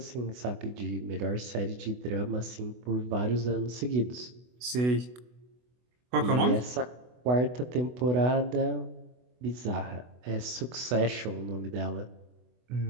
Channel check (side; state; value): left; late; 24 ms